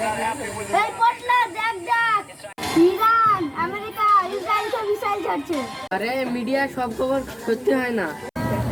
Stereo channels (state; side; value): identical; both; correlation 1.00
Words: not happy with them. এই পটলা দেখ ইরান আমেরিকা ইসরায়েলকে মিসাইল ছাড়ছে। আরে মিডিয়া সব খবর সত্যি হয় না।